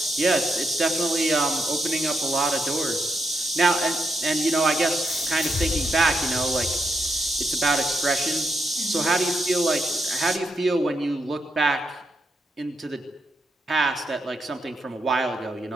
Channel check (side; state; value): both; normal; correlation 0.81